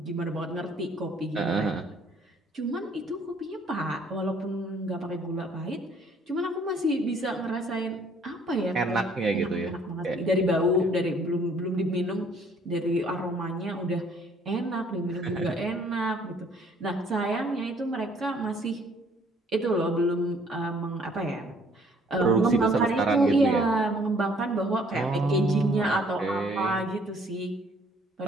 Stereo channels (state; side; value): normal; both; correlation 0.60